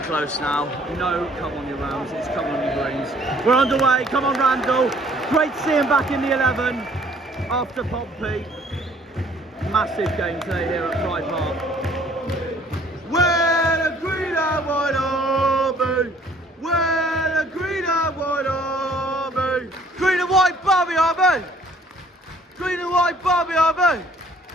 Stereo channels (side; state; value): both; normal; correlation 0.58